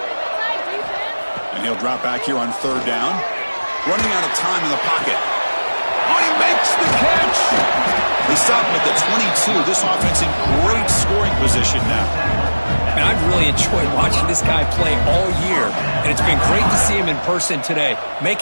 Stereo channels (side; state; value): both; inverted; correlation -1.00